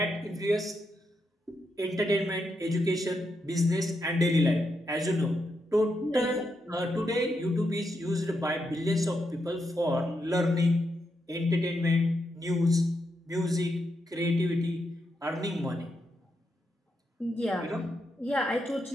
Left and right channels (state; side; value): normal; both; correlation 0.83